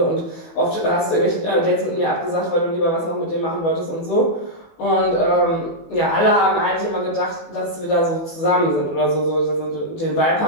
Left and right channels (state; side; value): late; right; 18 ms